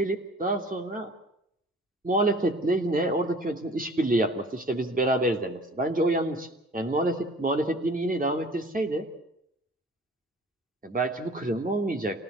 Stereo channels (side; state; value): both; normal; correlation 0.47